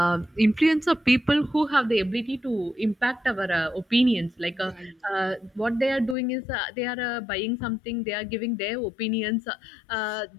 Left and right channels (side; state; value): right; drops out; at 6.2 s